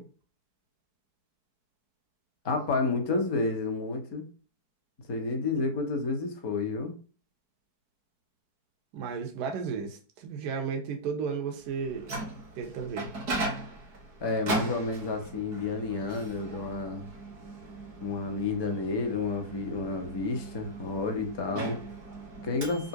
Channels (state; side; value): late; left; 4.7 ms